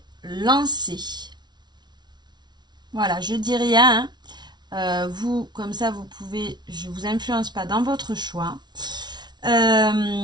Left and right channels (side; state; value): left; late; 0.20 ms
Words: lancer. Voilà, je dis rien, hein. Vous, comme ça, vous pouvez, je ne vous influence pas dans votre choix.